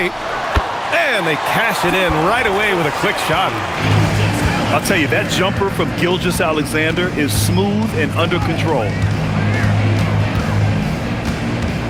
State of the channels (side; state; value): both; identical; correlation 1.00